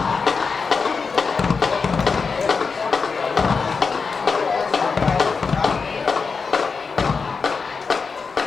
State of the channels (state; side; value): quieter; right; 5.0 dB